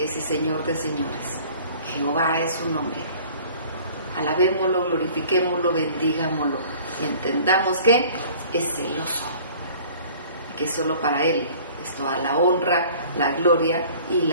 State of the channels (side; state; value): both; inverted; correlation -0.49